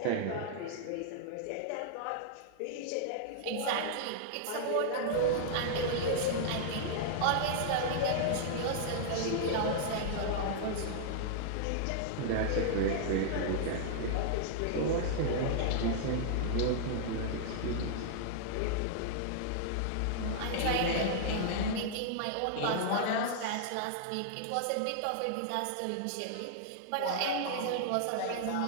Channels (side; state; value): both; different; correlation -0.01